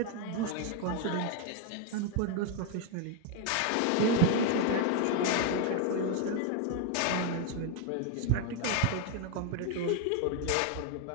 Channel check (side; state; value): both; different; correlation 0.01